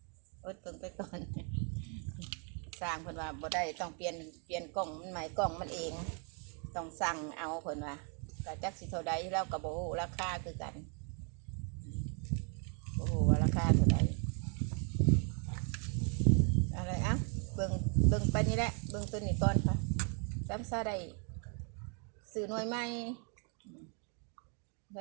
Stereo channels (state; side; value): quieter; left; 39.2 dB